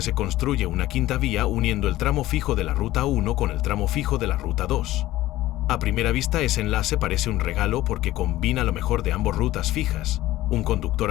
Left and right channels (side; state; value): right; quieter; 15.9 dB